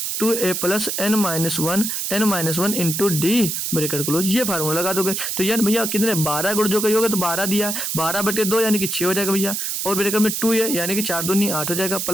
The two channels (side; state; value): right; noise; hiss, 2 dB below the sound